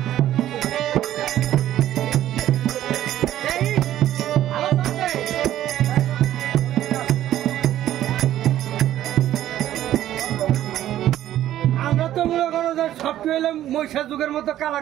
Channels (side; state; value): left; quieter; 12.7 dB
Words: আমরা তো মনে করো যে সব পেলে মহিষা যুগের মতো কালা